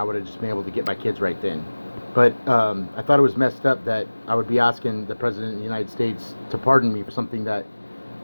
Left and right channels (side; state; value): both; inverted; correlation -1.00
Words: would have just been able to get my kids right then. But I thought it was messed up that I would be asking the President of the United States to pardon me for something that